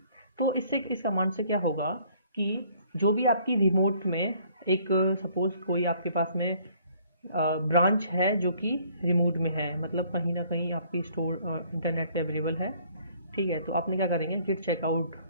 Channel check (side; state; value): both; inverted; correlation -0.60